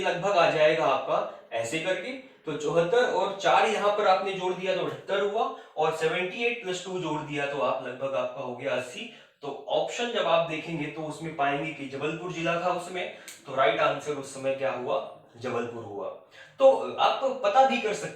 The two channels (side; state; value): both; identical; correlation 1.00